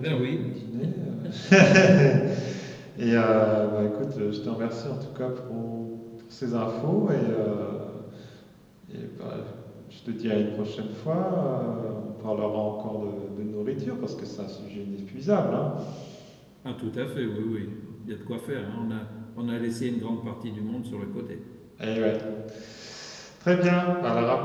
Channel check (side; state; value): both; identical; correlation 1.00